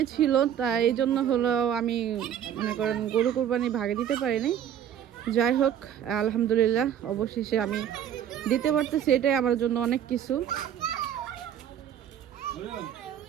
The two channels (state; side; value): quieter; left; 9.7 dB